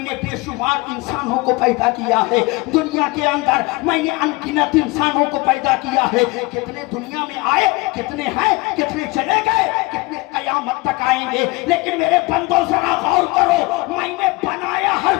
बेशुमार इंसानों को पैदा किया है। दुनिया के अंदर मैंने अनगिनत इंसानों को पैदा किया है। कितने दुनिया में आए, कितने हैं, कितने चले गए, कितने कयामत तक आएंगे। लेकिन मेरे बंदों जरा गौर करो, मैंने बनाया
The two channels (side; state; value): right; quieter; 23.6 dB